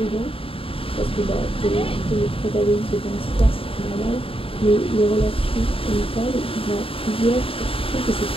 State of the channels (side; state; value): right; late; 0.27 ms